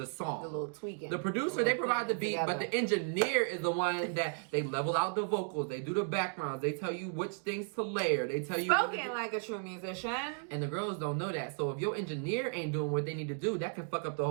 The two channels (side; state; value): left; silent; 55 dB below the other